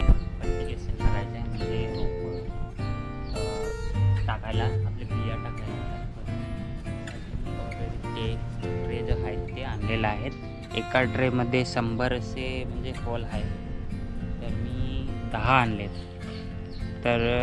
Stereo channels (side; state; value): both; identical; correlation 1.00